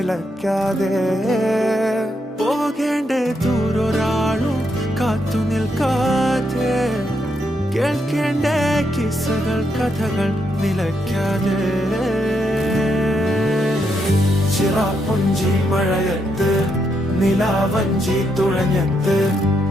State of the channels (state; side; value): normal; both; correlation 0.79